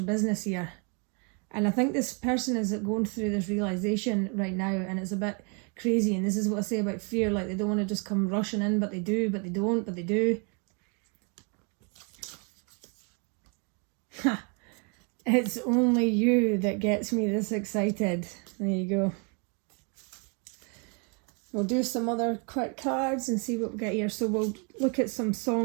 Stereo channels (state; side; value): quieter; left; 36.1 dB